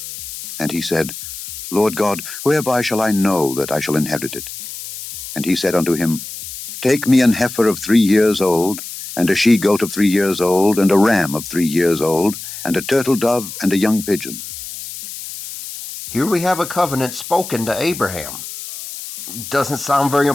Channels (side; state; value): left; noise; hiss, 11 dB below the sound